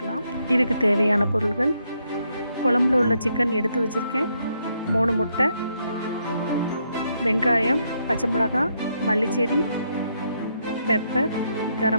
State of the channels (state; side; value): inverted; both; correlation -0.77